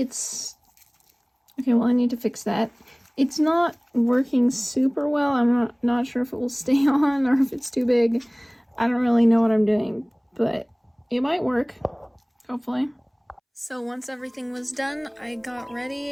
okay, well, I need to fix that. It's not working super well. I'm not sure if it will stay on or if it's too big. I don't really know what I'm doing, but it might work, hopefully. So once everything was done, I got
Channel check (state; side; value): identical; both; correlation 1.00